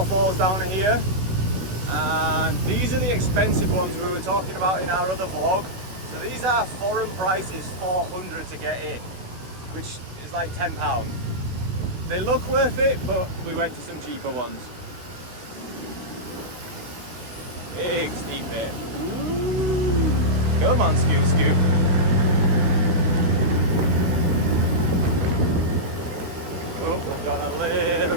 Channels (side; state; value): left; late; 16 ms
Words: down here, and these are the expensive ones we were talking about in our other vlog. So these are foreign prices, 400 to get in, which is like £10. They look worth it, but we went to some cheaper ones. Big steep bit. Ooh. Come on, Scoop Scoop. Oh, we've got a little